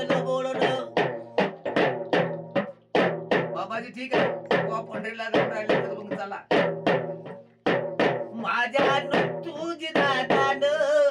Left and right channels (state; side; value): identical; both; correlation 1.00